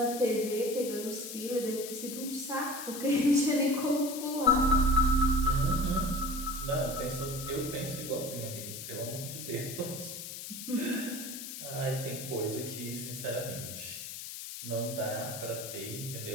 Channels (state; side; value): noise; left; hiss, 9 dB below the sound